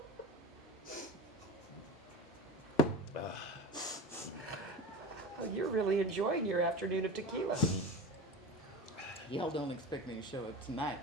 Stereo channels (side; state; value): both; normal; correlation 0.31